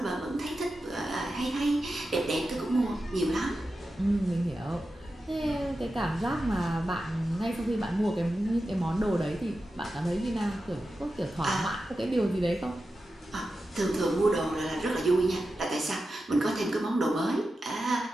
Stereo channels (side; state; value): both; normal; correlation 0.91